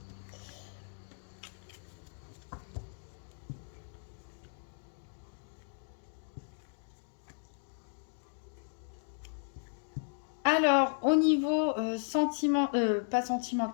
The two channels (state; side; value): silent; right; digital silence